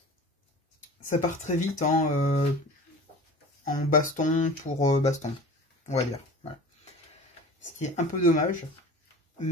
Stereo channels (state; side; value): normal; both; correlation 0.39